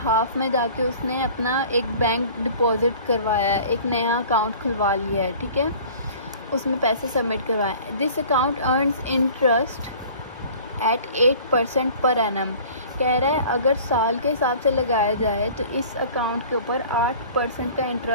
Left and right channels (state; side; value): inverted; both; correlation -0.46